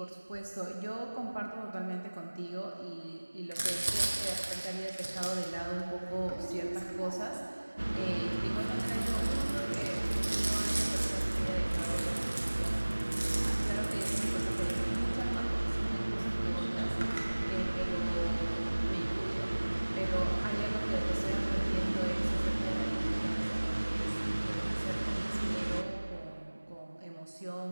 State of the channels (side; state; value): both; inverted; correlation -1.00